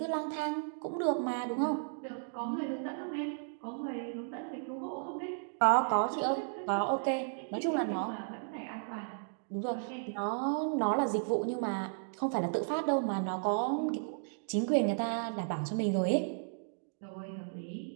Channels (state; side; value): silent; left; digital silence